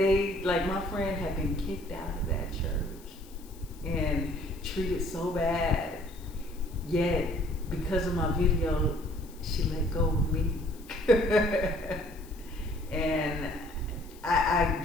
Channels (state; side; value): noise; left; hiss, 23 dB below the sound